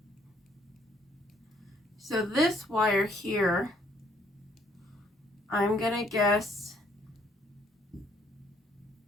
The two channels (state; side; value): normal; both; correlation 0.66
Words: So this wire here, I'm going to guess